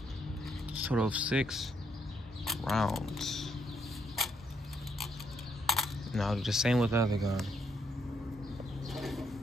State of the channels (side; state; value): both; normal; correlation 0.75